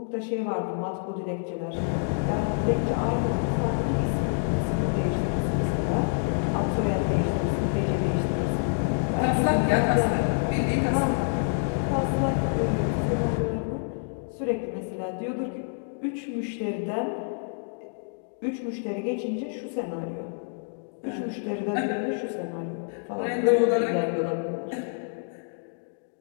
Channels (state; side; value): silent; right; digital silence